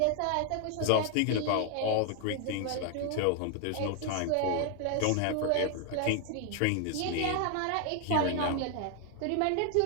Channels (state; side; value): different; both; correlation 0.00